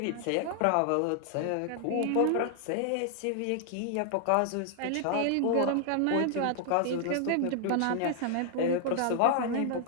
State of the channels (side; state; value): both; different; correlation 0.00